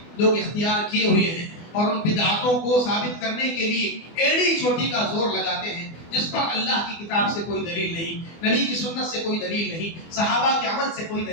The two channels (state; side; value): late; right; 24 ms